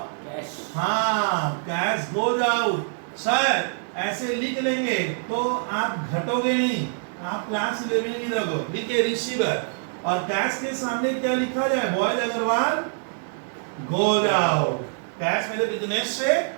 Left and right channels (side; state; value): left; silent; 62 dB below the other